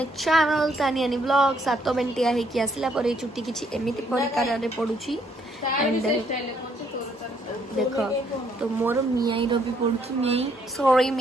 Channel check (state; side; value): normal; both; correlation 0.69